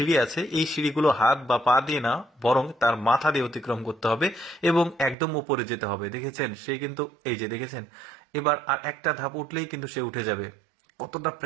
আছে, এই সিঁড়িগুলো হাত বা পা দিয়ে না, বরং তার মাথা দিয়ে অতিক্রম করতে হবে এবং একদম উপরে যেতে হবে। দেখেছেন সে কিন্তু এই যে দেখেছেন, এবার আর একটা ধাপ উঠলেই কিন্তু সে উঠে যাবে। কতটা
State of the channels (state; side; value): drops out; left; at 5.2 s